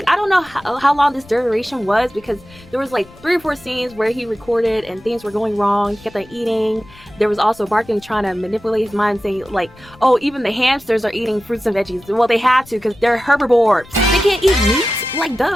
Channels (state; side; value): noise; left; rumble, 24 dB below the sound